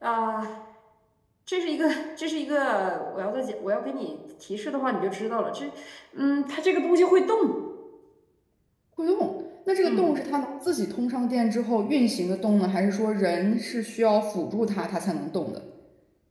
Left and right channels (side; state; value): both; identical; correlation 1.00